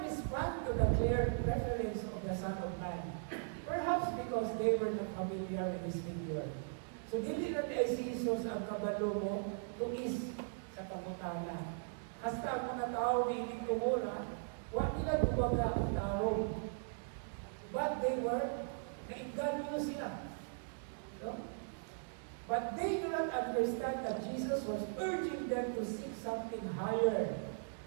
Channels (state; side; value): silent; left; digital silence